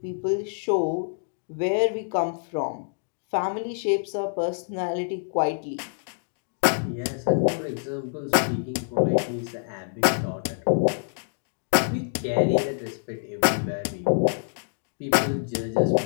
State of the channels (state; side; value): silent; right; digital silence